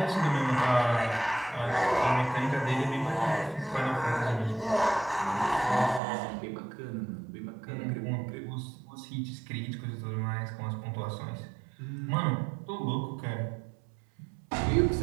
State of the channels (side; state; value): left; drops out; at 6.0 s